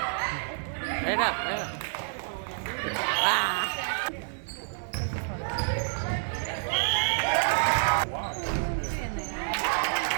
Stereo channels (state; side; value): silent; left; digital silence